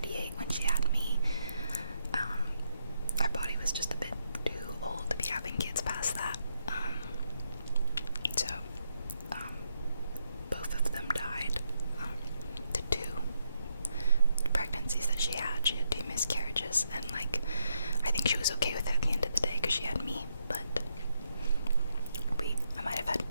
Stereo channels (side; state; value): both; inverted; correlation -0.78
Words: when she had me, our body was just a bit too old to be having kids past that. So both of them died. The 2 pregnancies that she had 2 miscarriages, and like I think she was okay with it at the end of the day because she had me, but I might have had